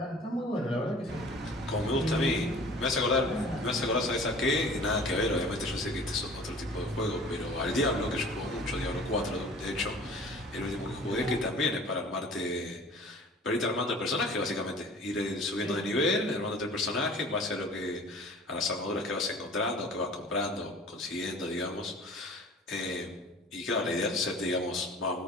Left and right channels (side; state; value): both; normal; correlation 0.46